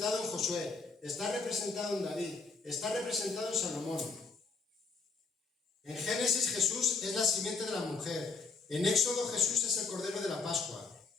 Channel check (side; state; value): right; quieter; 4.4 dB